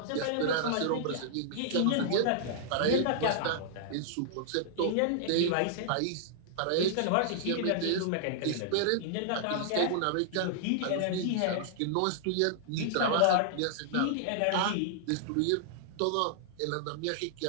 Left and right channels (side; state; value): both; different; correlation -0.01